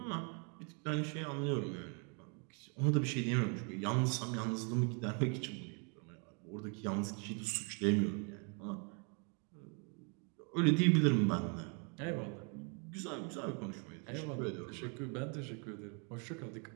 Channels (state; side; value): quieter; left; 37.1 dB